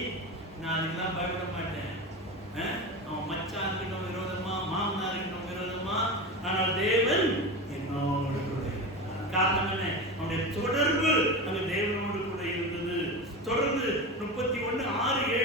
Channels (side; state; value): both; normal; correlation 0.24